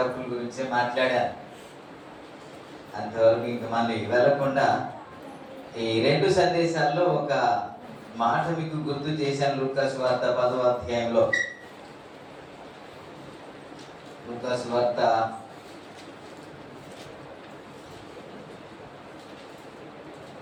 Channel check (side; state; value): both; identical; correlation 1.00